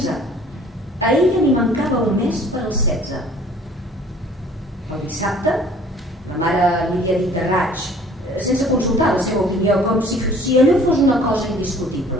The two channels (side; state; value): both; normal; correlation 0.53